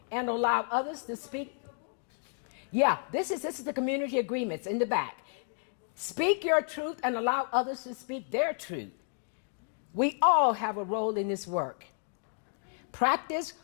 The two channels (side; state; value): right; silent; 56 dB below the other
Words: and allow others to speak. Yeah, this is the community agreements in the back. Speak your truth and allow others to speak their truth. We all have a role in this work. Practice